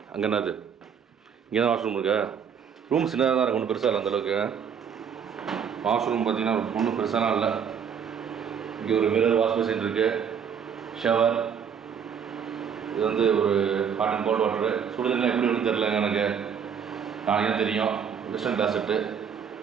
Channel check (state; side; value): quieter; left; 7.4 dB